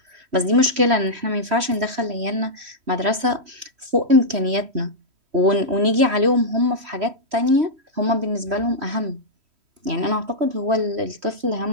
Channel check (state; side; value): late; left; 3.1 ms